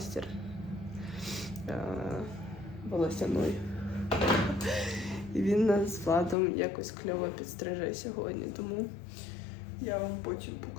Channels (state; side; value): drops out; right; at 6.4 s